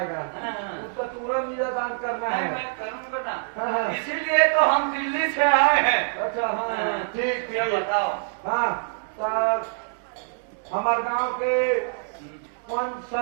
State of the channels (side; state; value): left; silent; digital silence